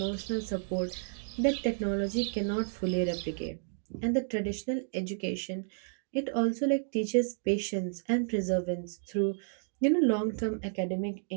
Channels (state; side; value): silent; left; digital silence